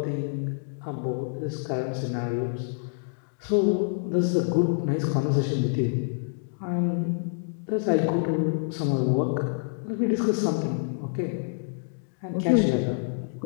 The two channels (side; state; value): right; silent; digital silence